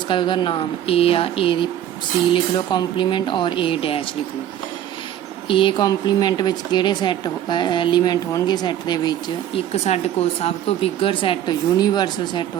कर उसका नाम ए आ, ए दी सी लिख लो कॉम्पलीमेंट और ए डैश लिख लो। ए कॉम्पलीमेंट विच किहड़े सैट एलीमेंट होणगे सैट दे विच? एक साडे कोल सब तो बिगर सैट यूनीवर्सल सैट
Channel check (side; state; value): left; quieter; 11.2 dB